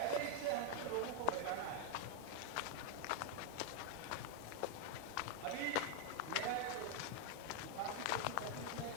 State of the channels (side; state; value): both; different; correlation 0.01